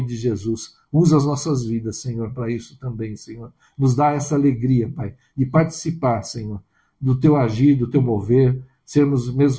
de Jesus. Usa as nossas vidas, Senhor, para isso também, Senhor. Nos dá essa alegria, Pai, de participar, Senhor, do Teu agir, do Teu mover, sermos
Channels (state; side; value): identical; both; correlation 1.00